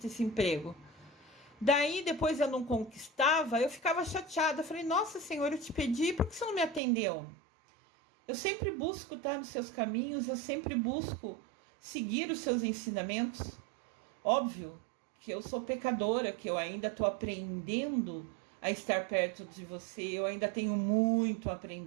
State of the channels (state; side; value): drops out; left; at 6.8 s